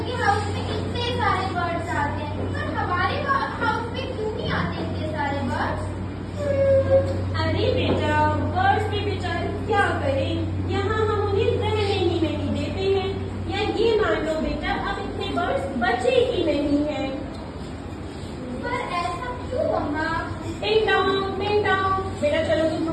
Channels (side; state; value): both; identical; correlation 1.00